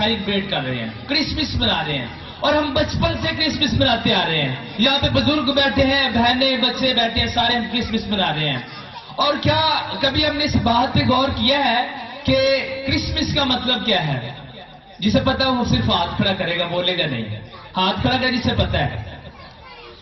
کر رہے ہیں، کرسمس منا رہے ہیں. اور ہم بچپن سے کرسمس مناتے آ رہے ہیں. یہاں پہ بزرگ بیٹھے ہیں، بہنیں بچے بیٹھے ہیں، سارے ہم کرسمس منا رہے ہیں. اور کیا کبھی ہم نے اس بات پہ غور کیا ہے کہ کرسمس کا مطلب کیا ہے؟ جسے پتا ہے وہ صرف ہاتھ کھڑا کرے گا، بولے گا نہیں. ہاتھ کھڑا کرے جسے پتا ہے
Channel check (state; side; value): identical; both; correlation 1.00